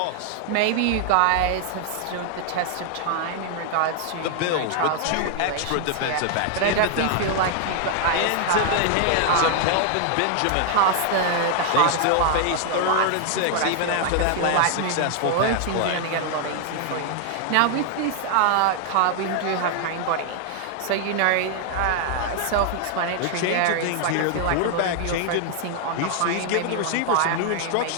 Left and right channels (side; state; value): both; different; correlation 0.00